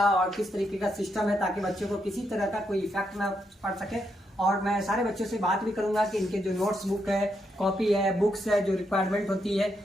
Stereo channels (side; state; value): both; normal; correlation 0.80